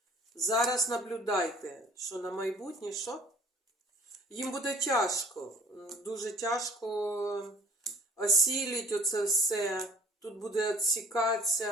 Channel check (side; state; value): both; normal; correlation 0.53